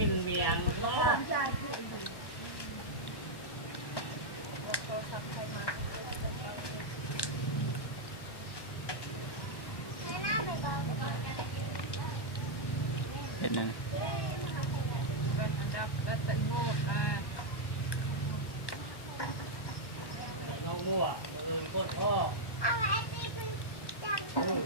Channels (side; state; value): right; late; 1.1 ms